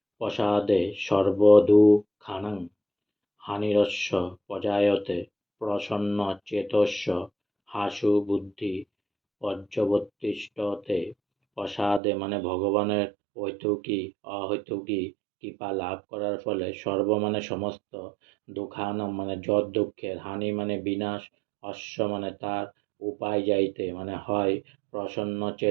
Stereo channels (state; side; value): drops out; left; at 12.0 s